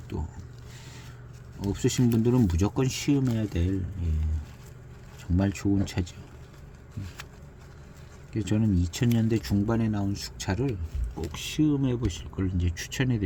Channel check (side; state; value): both; identical; correlation 1.00